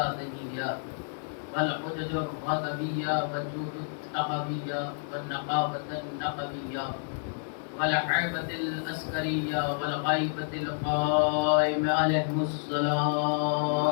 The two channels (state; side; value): silent; right; digital silence